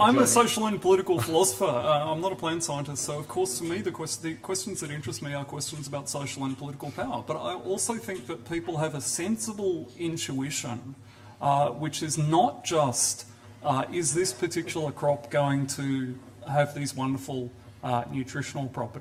a social and political philosopher. I'm not a plant scientist, so of course to me the questions that interest me are questions about social and political power. But I also think that people have a sensible intuition, which is not just, is this particular crop going to have these wonderful nutritional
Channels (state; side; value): identical; both; correlation 1.00